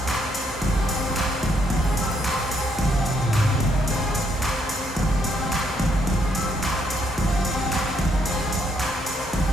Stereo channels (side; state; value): both; normal; correlation 0.73